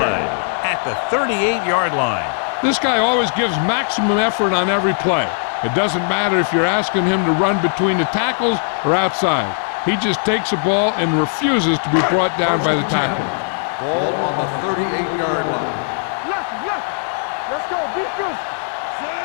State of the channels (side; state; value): right; silent; 67 dB below the other